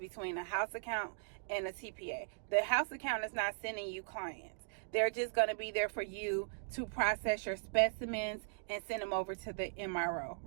a house account and a TPA. The house account is not sending you clients. They're just going to be there for you to process your specimens and send them over to the MRO,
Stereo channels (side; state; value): left; silent; digital silence